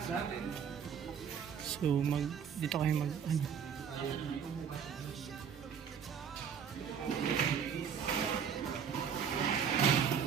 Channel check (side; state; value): left; quieter; 7.5 dB